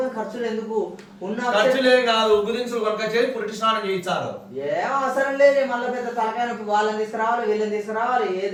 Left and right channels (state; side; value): identical; both; correlation 1.00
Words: ఖర్చులు ఎందుకు? ఉన్న ఖర్చులేం కాదు, ఉగ్గుదించులు కొనుక చేసి పురిటి స్నానం చేయించారు. ఏం అవసరం లేదు. మళ్ళీ పెద్ద తలకాయ నొప్పి. వాళ్ళని తీసుకురావాలి, వీళ్ళని తీసుకురావాలి,